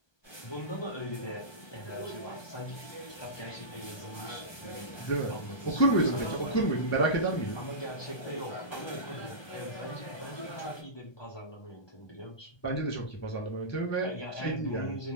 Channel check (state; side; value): late; right; 1.2 ms